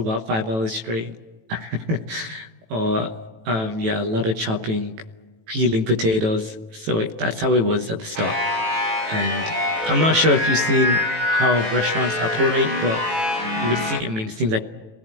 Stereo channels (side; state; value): left; late; 18 ms